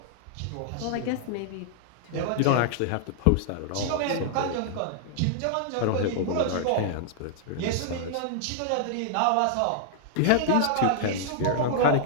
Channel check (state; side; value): different; both; correlation -0.01